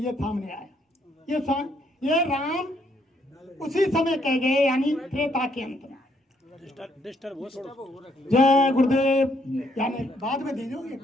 सामने आया, ये राम उसी समय कह गए, यानी त्रेता के अंत में। जय गुरुदेव, यानी बाद में दीजिए,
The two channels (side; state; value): both; normal; correlation 0.71